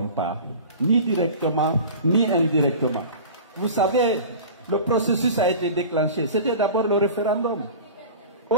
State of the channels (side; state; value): both; inverted; correlation -0.38